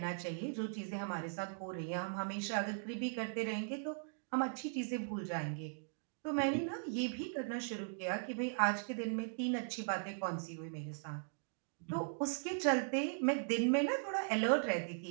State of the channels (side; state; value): left; silent; digital silence